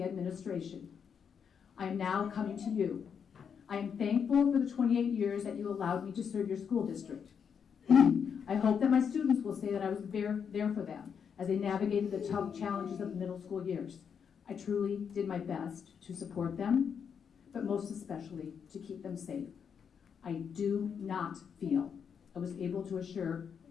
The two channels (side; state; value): right; quieter; 7.1 dB